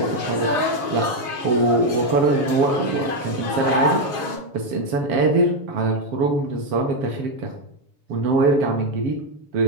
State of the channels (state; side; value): late; left; 7.1 ms